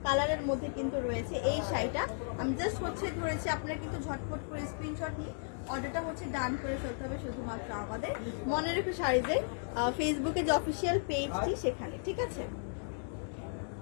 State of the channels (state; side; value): silent; right; digital silence